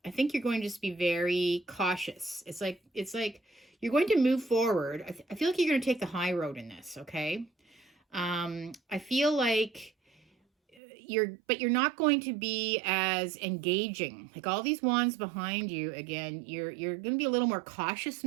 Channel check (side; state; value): left; drops out; at 10.8 s